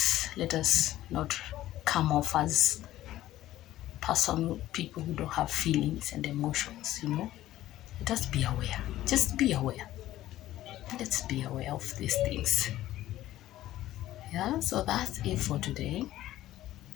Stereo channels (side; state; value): right; quieter; 14.4 dB